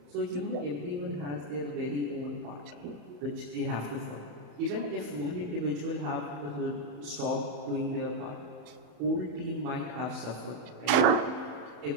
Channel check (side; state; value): left; late; 35 ms